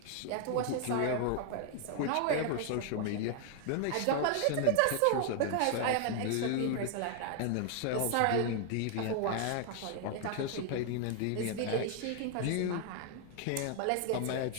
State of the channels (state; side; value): different; both; correlation 0.00